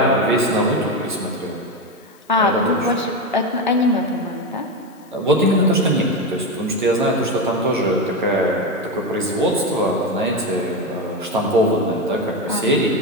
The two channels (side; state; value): left; noise; hiss, 29 dB below the sound